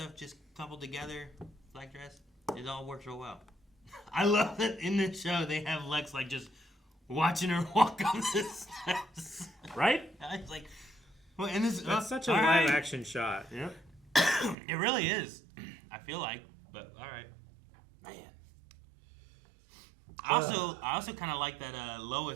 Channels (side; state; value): left; drops out; at 14.6 s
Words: just coupled together, black dress. It all works real well. I love that in this show they have Lex like just watching her walk up the steps. Right? I was like, well, and this That's such a all live right. action shot. Yep. It really is. I feel like, but all right. Man. I also kind of like that